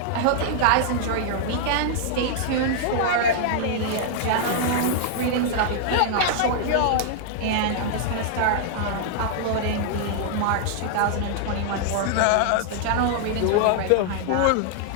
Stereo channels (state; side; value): different; both; correlation -0.01